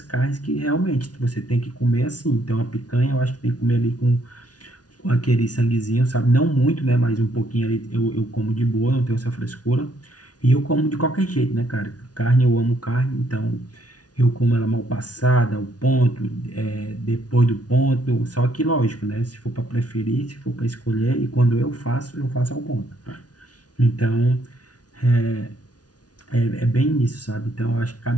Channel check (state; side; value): late; right; 0.69 ms